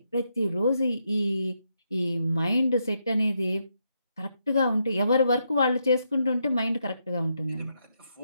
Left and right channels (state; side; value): inverted; both; correlation -0.80